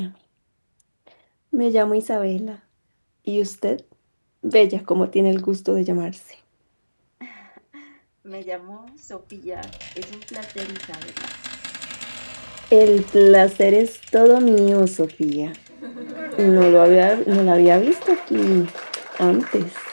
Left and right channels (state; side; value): inverted; both; correlation -1.00